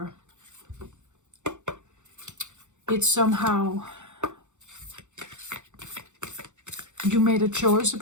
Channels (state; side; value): late; left; 0.84 ms